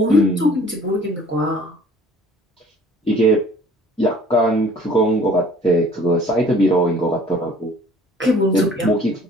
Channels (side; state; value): both; normal; correlation 0.52